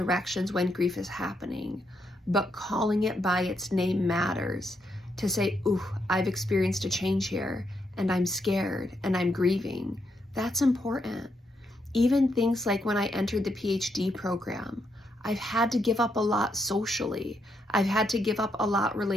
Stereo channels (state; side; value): normal; both; correlation 0.79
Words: when grief is happening. But calling it by its name matters. To say, ooh, I've experienced a change here, and I'm scared, and I'm grieving. That's important. Even things like when I entered the PhD program, I've had to give up a lot socially. I've had to give up a lot